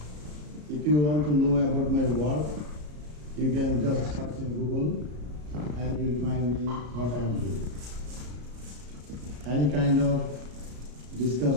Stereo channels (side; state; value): left; late; 33 ms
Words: If you want to know about my work, you can just search in Google and you will find me what I am doing. Any kind of